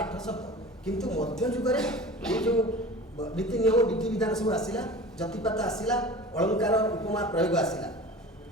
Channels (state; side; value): normal; both; correlation 0.37